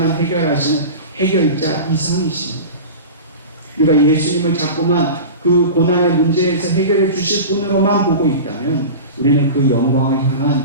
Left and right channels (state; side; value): inverted; both; correlation -0.31